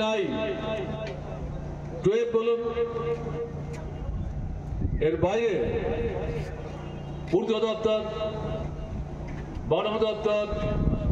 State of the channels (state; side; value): identical; both; correlation 1.00